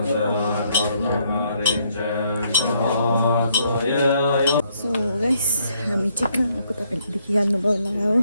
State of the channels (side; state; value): both; inverted; correlation -0.70